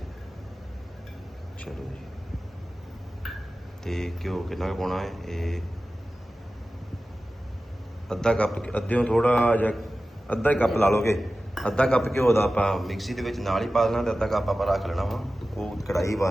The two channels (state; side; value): normal; both; correlation 0.95